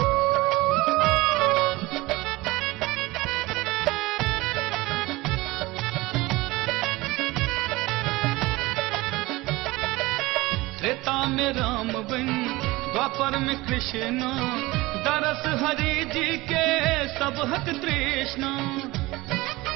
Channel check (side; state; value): left; quieter; 20.6 dB